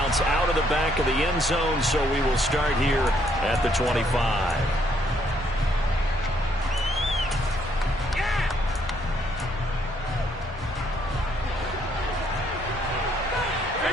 out of the back of the end zone, so we will start here at the 25.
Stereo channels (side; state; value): both; normal; correlation 0.70